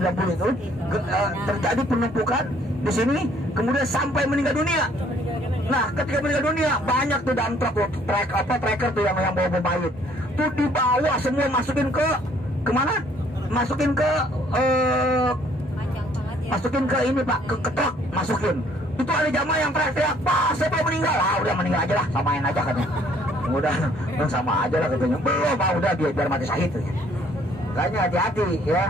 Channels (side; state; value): both; normal; correlation 0.61